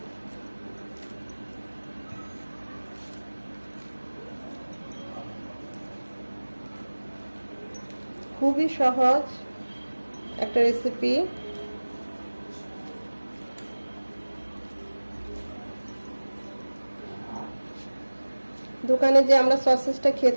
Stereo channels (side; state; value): both; inverted; correlation -1.00